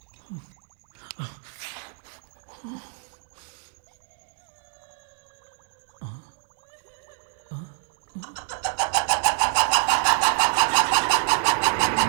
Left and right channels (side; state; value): left; silent; 61 dB below the other